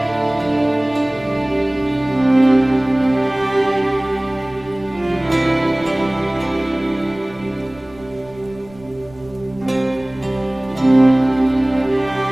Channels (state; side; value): noise; right; rumble, 24 dB below the sound